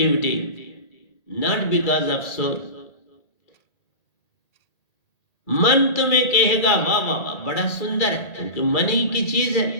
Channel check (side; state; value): right; late; 2.3 ms